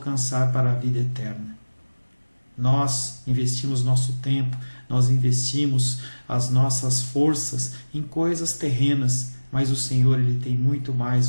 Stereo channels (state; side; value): inverted; both; correlation -1.00